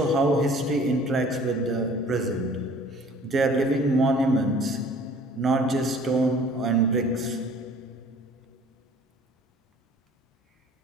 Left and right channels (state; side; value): normal; both; correlation 0.51